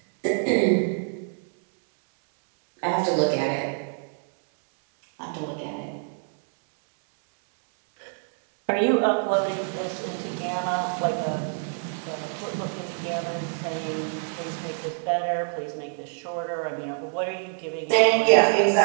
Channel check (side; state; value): left; silent; 60 dB below the other